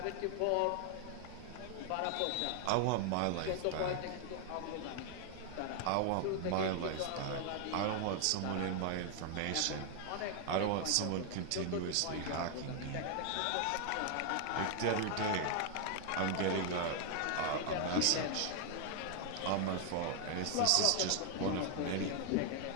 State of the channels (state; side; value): different; both; correlation 0.00